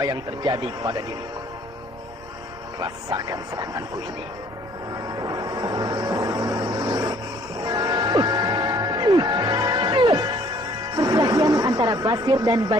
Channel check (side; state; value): both; normal; correlation 0.58